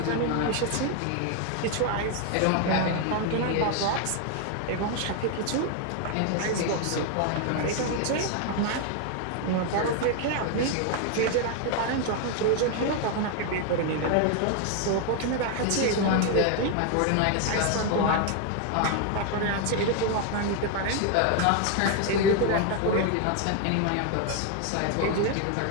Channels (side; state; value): both; different; correlation 0.01